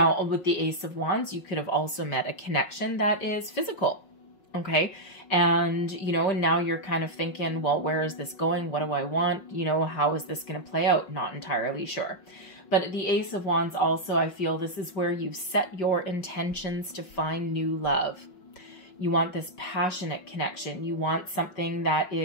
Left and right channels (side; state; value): right; late; 5.5 ms